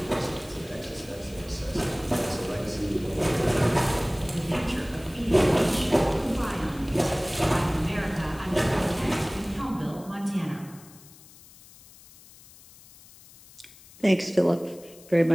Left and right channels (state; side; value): noise; left; hiss, 22 dB below the sound